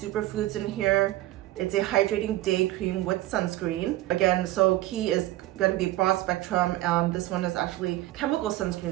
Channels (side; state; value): left; quieter; 16.4 dB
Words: in here. It's a hydrating day cream with sunscreen. Again, so key is going to be broad spectrum. This one is actually chemical sunscreen